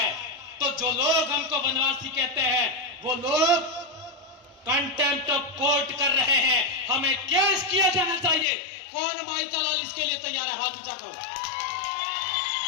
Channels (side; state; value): right; drops out; at 8.5 s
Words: तो जो लोग हमको वनवासी कहते हैं वो लोग कंटेम्प्ट ऑफ कोर्ट कर रहे हैं। हमें केस किया जाना चाहिए। कौन माइका लाल इसके लिए तैयार है? हाथ ऊंचा करो।